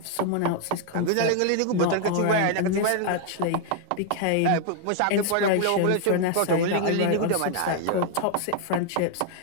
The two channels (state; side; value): different; both; correlation 0.00